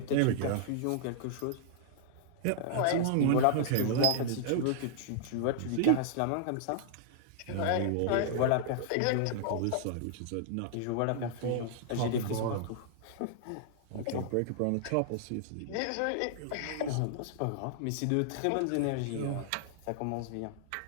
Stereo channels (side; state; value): both; different; correlation -0.01